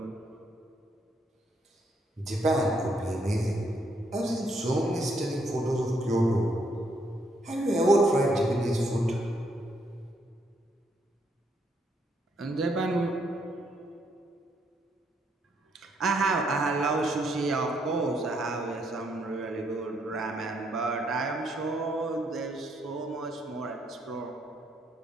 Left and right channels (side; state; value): both; normal; correlation 0.74